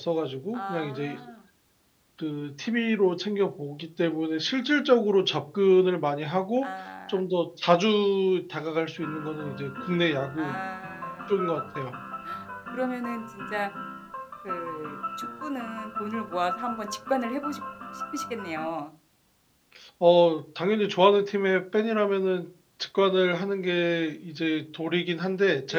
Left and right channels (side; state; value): both; identical; correlation 1.00